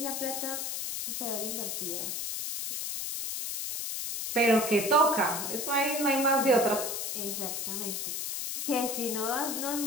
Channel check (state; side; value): noise; left; hiss, 3 dB below the sound